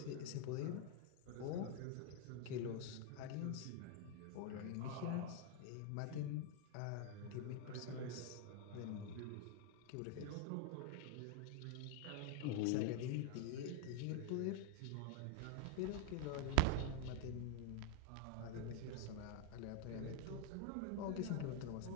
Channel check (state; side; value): different; both; correlation 0.01